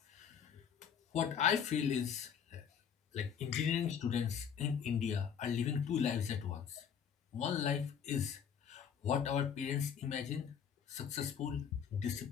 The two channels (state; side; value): quieter; right; 7.7 dB